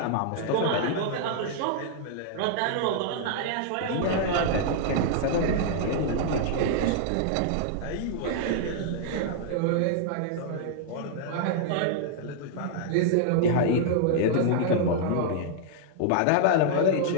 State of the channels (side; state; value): both; different; correlation -0.01